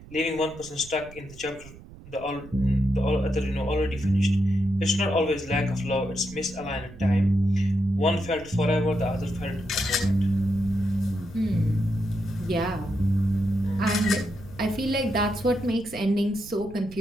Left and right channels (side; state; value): right; noise; rumble, 18 dB below the sound